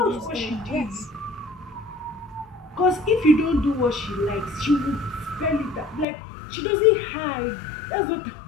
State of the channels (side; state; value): right; drops out; at 6.1 s